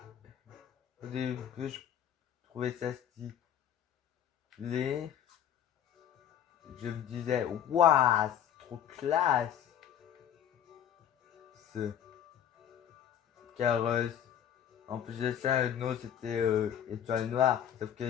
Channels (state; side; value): quieter; right; 9.6 dB